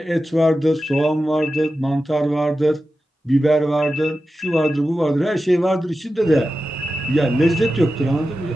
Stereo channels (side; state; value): both; normal; correlation 0.92